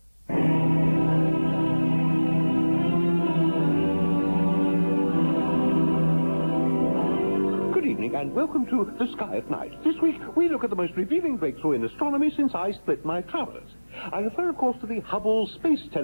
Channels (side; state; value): both; inverted; correlation -1.00